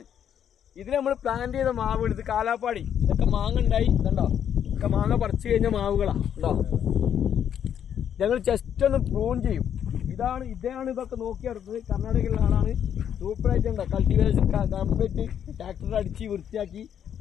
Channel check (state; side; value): quieter; right; 9.1 dB